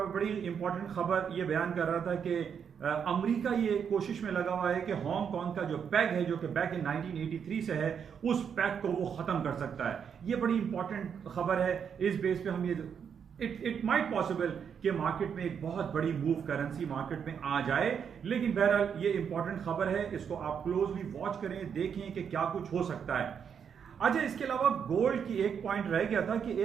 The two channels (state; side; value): quieter; left; 7.4 dB